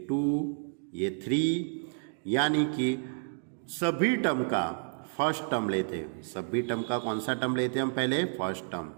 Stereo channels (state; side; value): silent; left; 57 dB below the other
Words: 2, ये 3, यानी कि सभी टर्म का फर्स्ट टर्म लेते हैं। सभी टर्म का कौन सा टर्म लेते हैं हम पहले? फर्स्ट